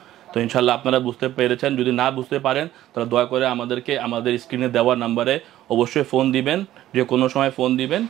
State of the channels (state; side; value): quieter; left; 13.7 dB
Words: তো ইনশাল্লাহ আপনারা বুঝতে পেরেছেন। যদি না বুঝতে পারেন তাহলে দয়া করে আমাদেরকে আমাদের স্ক্রিনে দেওয়া নাম্বারে অবশ্যই ফোন দিবেন, যে কোনো সময় ফোন দিবেন,